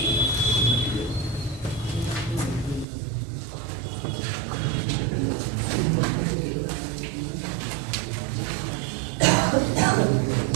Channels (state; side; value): drops out; left; at 2.9 s